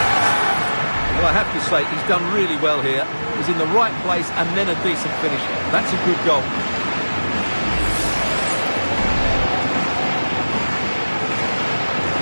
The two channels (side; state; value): both; inverted; correlation -1.00